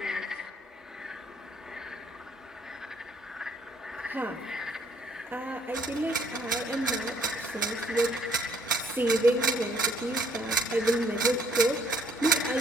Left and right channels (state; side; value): normal; both; correlation 0.64